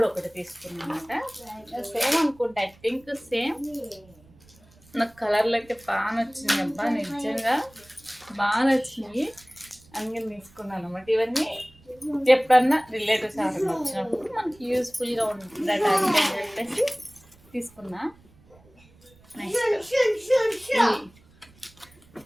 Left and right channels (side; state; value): right; noise; rumble, 28 dB below the sound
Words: ఒకటి తీసుకున్నాను అనమాట. సేమ్ అనుకుంటా, ఐ థింక్ సేమ్. నాకు కలర్లు అయితే బాగా నచ్చింది అబ్బా, నిజంగా బాగా నచ్చినాయి. అందుకని తీసుకున్నాను అనమాట. ఇవన్నీ ఎప్పుడన్నా రిలేటివ్స్ ఎవరైనా వచ్చినప్పుడు మనకి యూస్ఫుల్గా ఉంటుందట అని చెప్పేసి తీసుకున్నా.